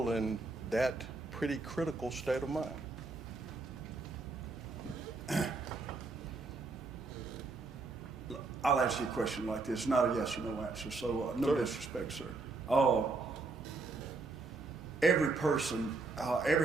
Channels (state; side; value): quieter; left; 3.7 dB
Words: in that pretty critical state of mind? I'll answer your question like this, not a yes or no answer, so no Sure. disrespect, sir. Every person,